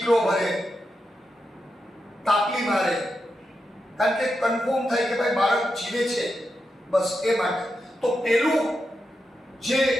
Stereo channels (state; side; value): normal; both; correlation 0.87